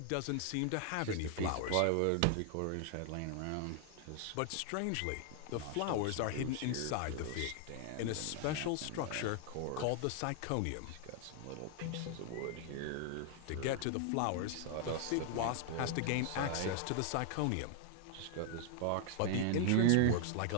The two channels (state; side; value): different; both; correlation 0.00